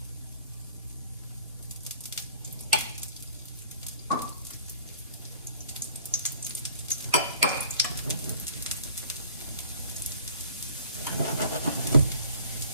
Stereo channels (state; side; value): inverted; both; correlation -0.52